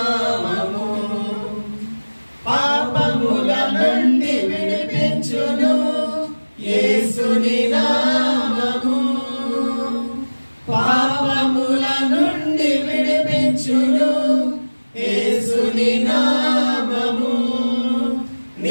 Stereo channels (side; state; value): both; inverted; correlation -1.00